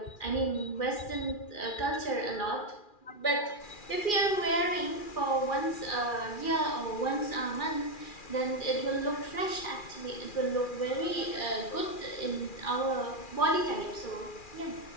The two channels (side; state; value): right; late; 2.4 ms